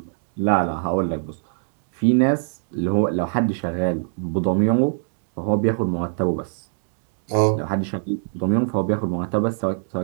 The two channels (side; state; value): left; silent; digital silence